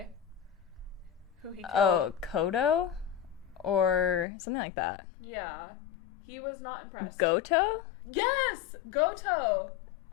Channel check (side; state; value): right; drops out; at 4.2 s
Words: Who he killed. Oh, Kodo? Or something like that. Yeah. He was not impressed. Goto? Yes! Goto!